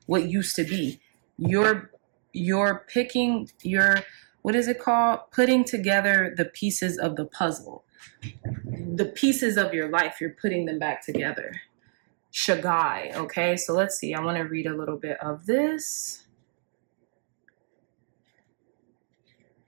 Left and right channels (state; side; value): silent; left; digital silence